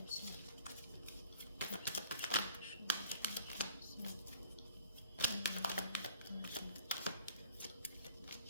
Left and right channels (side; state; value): both; inverted; correlation -0.52